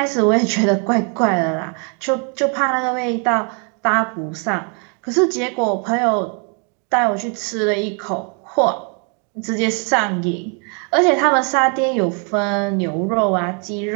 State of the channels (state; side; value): quieter; left; 38.2 dB